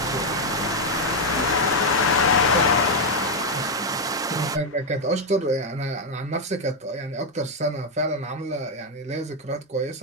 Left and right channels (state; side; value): normal; both; correlation 0.03